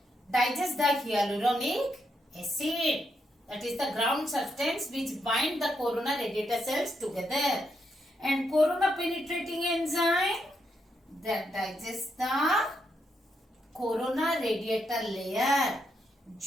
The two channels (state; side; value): normal; both; correlation 0.80